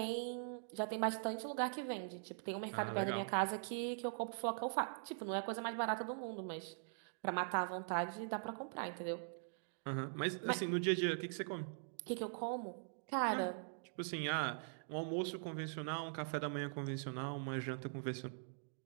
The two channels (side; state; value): left; silent; digital silence